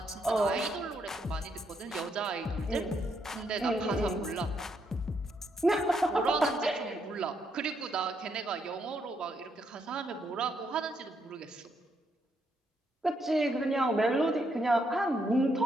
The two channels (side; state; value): both; normal; correlation 0.76